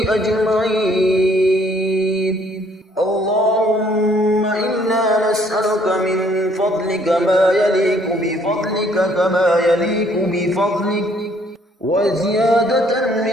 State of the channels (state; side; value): normal; both; correlation 0.63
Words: أجمعين اللهم إنا نسألك من فضلك ما يليق بفضلك كما يليق بفضلك وزيادة